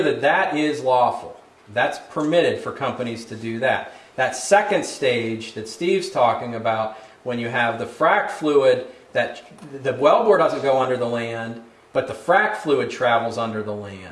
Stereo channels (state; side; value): identical; both; correlation 1.00